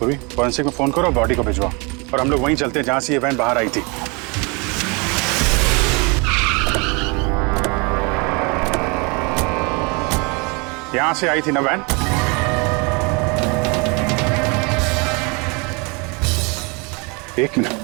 अभी फॉरेंसिक में फोन करो, बॉडी को भिजवाओ और हम लोग वहीं चलते हैं जहां से ये वैन बाहर आई थी। यहां से आई थी ना वैन? एक मिनट,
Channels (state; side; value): quieter; left; 30.2 dB